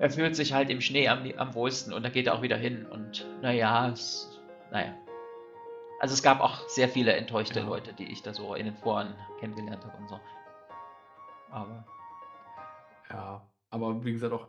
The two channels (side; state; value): both; identical; correlation 1.00